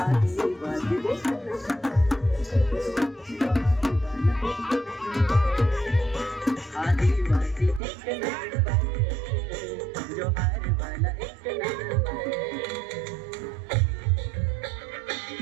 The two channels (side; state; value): left; drops out; at 7.8 s